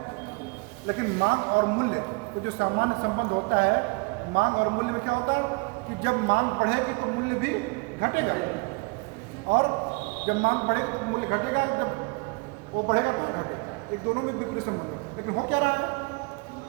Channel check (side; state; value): left; quieter; 30.1 dB